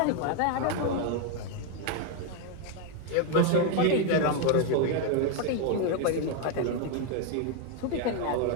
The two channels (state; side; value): different; both; correlation 0.01